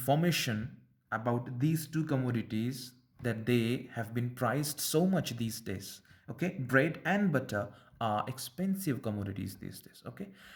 about these two commodities, that they have been priced so much these days. Okay, bread and butter are expensive commodities these days. Okay,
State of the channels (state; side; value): identical; both; correlation 1.00